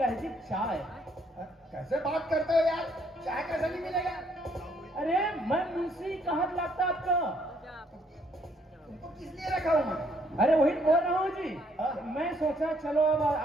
है जी, चाय। कैसे बात करते हो यार? चाय कैसे नहीं मिलेगा? अरे मैं मुंशी कहाँ लगता आपका? तुमको किस लिए रखा हूँ मैं? अरे वही बोल रहा हूँ जी। हाँ। मैं सोचा चलो अब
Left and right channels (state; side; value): normal; both; correlation 0.68